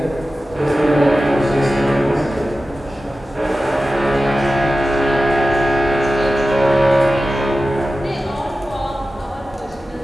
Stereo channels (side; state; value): both; normal; correlation 0.94